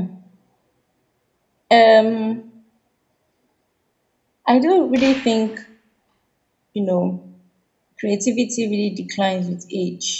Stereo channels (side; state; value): both; identical; correlation 1.00